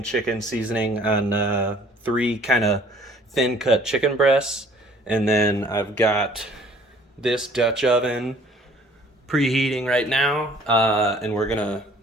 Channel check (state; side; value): normal; both; correlation 0.56